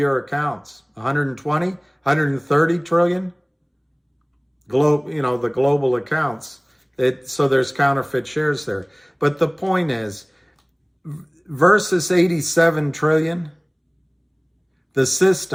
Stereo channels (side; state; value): both; identical; correlation 1.00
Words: accounts? 120, 130 trillion? The global accounts. So there's counterfeit shares there. But the point is, versus 87 trillion, the